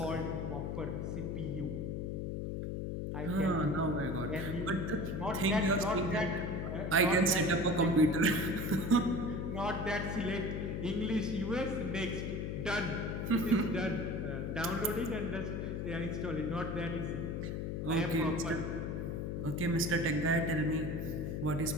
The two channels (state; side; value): noise; left; hum, 2 dB below the sound